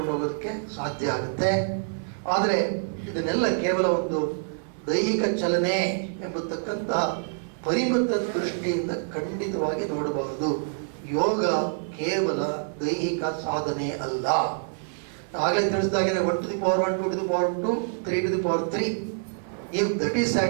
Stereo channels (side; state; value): left; silent; 61 dB below the other